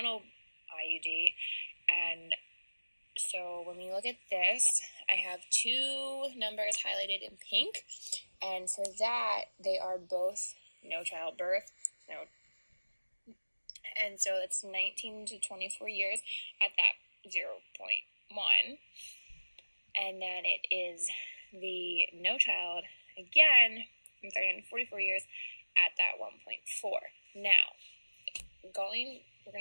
IUD. And so when we look at this, I have two numbers highlighted in pink, and for that, they are both no childbirth, and so it's 19 to 24 years at that 0.1, and then it is the no child again from 39 to 44 years at that 1.4. Now, we're going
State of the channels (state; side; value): inverted; both; correlation -1.00